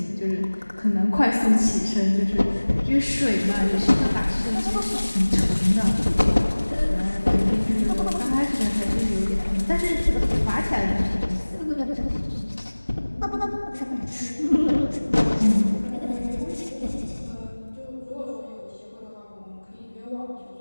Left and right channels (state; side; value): inverted; both; correlation -1.00